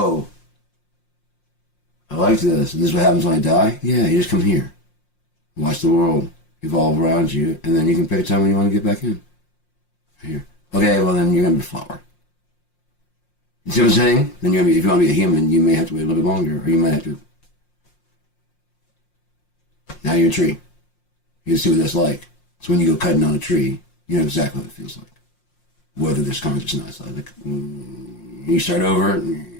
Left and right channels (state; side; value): late; right; 5.6 ms